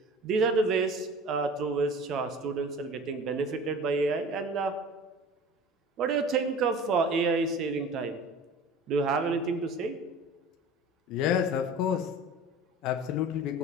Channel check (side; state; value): both; normal; correlation 0.40